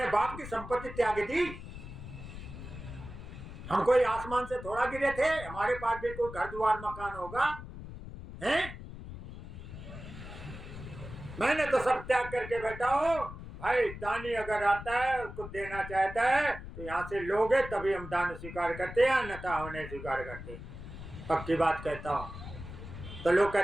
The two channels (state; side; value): noise; left; rumble, 11 dB below the sound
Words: बाप की संपत्ति त्याग दी। हम कोई आसमान से थोड़ा गिरे थे, हमारे पास भी कोई घर द्वार मकान होगा, हैं? मैंने तो सब त्याग करके बैठा हूं। भाई दानी अगर आता है, उसको देना चाहता है तो यहाँ से लोगे तभी हम दान स्वीकार करते हैं, अन्यथा हम नहीं स्वीकार करते। पक्की बात कहता हूँ। तो लोग